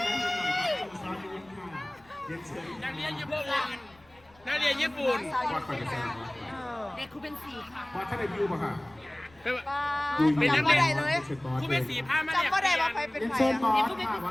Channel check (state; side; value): noise; left; rumble, 29 dB below the sound